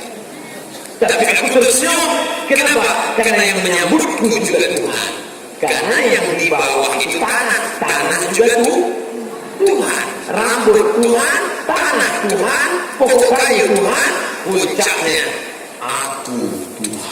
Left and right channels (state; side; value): identical; both; correlation 1.00